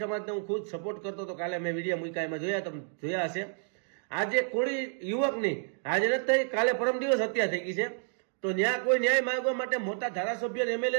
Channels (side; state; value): left; silent; digital silence